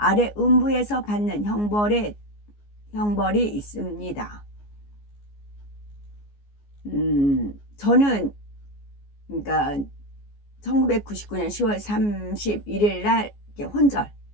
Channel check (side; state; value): right; late; 14 ms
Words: 음부에서 받는 형벌이 있습니다. 저는 그러니까 1999년 10월 31일 날